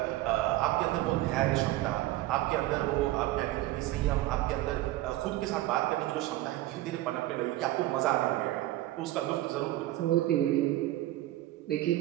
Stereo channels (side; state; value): left; quieter; 16.2 dB